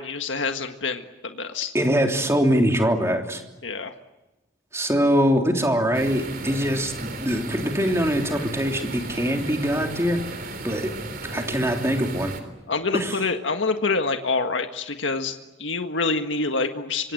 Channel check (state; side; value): normal; both; correlation 0.54